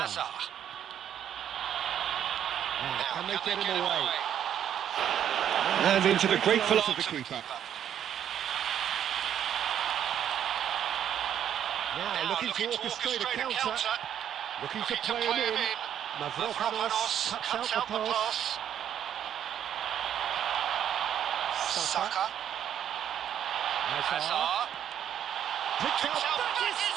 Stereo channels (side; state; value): left; quieter; 9.7 dB